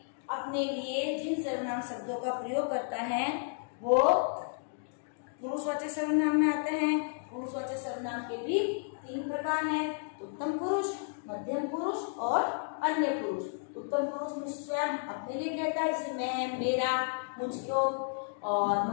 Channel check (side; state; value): right; silent; digital silence